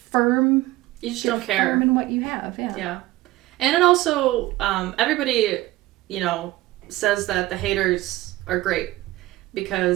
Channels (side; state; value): left; quieter; 17.5 dB